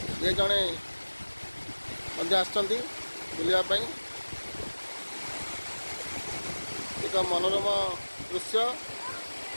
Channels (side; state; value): both; inverted; correlation -1.00